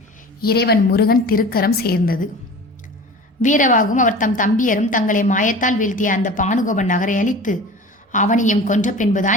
இறைவன் முருகன் திருக்கரம் சேர்ந்தது. வீரவாகும் அவர் தம் தம்பியரும் தங்களை மாயத்தால் வீழ்த்திய அந்த பானுகோபன் நகரை அழித்து அவனையும் கொன்ற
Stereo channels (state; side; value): normal; both; correlation 0.38